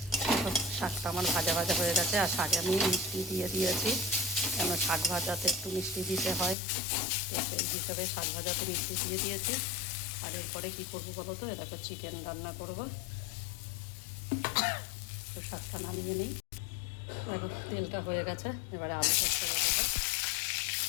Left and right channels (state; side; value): drops out; right; at 6.6 s